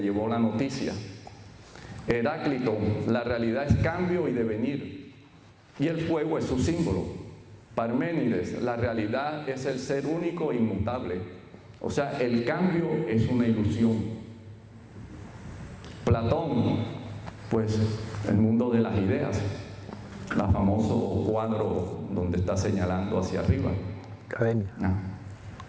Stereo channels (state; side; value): identical; both; correlation 1.00